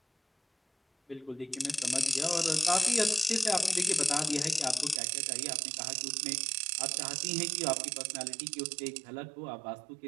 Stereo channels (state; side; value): drops out; left; at 5.0 s